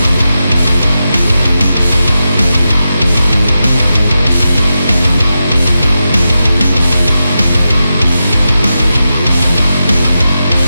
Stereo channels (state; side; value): inverted; both; correlation -0.89